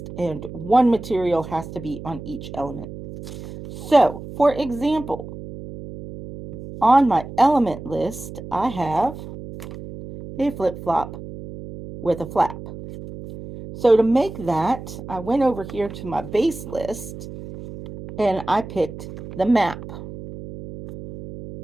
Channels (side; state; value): right; noise; hum, 12 dB below the sound